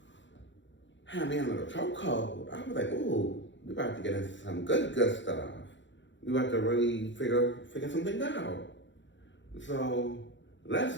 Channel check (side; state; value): right; late; 0.54 ms